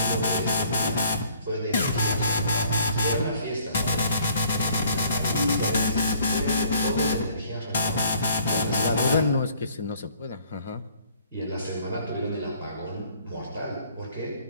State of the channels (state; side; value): inverted; both; correlation -0.59